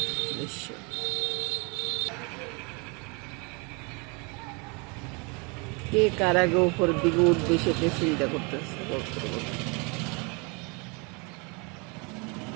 দৃশ্য। কে কার আগে উপর দিকে উঠবে সেটা চিন্তা করতেছে কবুতরগুলো।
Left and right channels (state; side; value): quieter; left; 31.2 dB